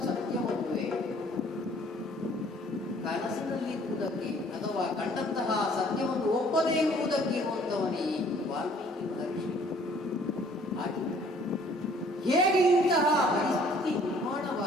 ಸತ್ಯವಲ್ಲವೇ? ಕನಸಿನಲ್ಲಿರುವುದಕ್ಕೆ ಅಥವಾ ಕಂಡಂತಹ ಸತ್ಯವನ್ನು ಒಪ್ಪದೇ ಇರುವುದಕ್ಕೆ ಇರುವಂತವನೇ ಈ ವಾಲ್ಮೀಕಿ ಮಹರ್ಷಿ. ಹಾಗೆ ಹೇಗೆ ಇಂತಹ ಪರಿಸ್ಥಿತಿ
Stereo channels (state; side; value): normal; both; correlation 0.58